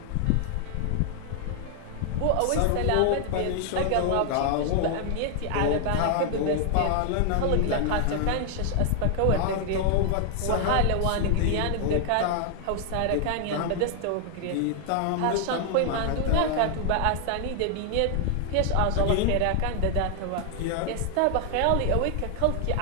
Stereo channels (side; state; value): both; different; correlation 0.00